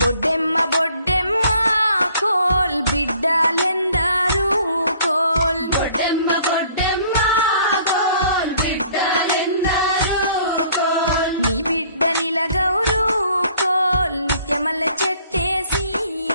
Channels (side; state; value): both; inverted; correlation -0.57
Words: Boddemma Boddemma coal బిడ్డలెందరూ coal Boddemma Boddemma coal బిడ్డలెందరూ coal నీ బిడ్డ నిలగౌరు కోల్ నిత్యమల్ల చెట్టేసి